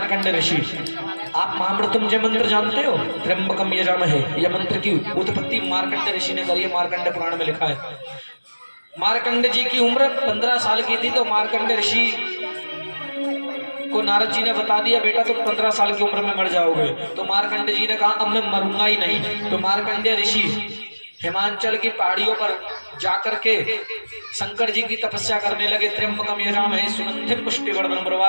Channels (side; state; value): both; inverted; correlation -1.00